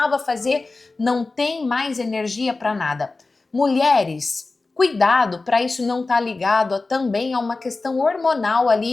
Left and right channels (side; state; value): right; quieter; 3.6 dB